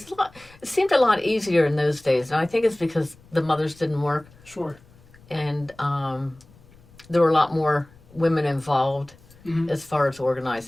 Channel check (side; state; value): left; noise; rumble, 26 dB below the sound